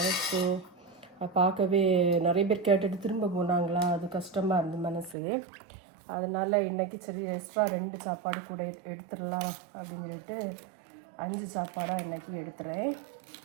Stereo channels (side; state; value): left; drops out; at 5.2 s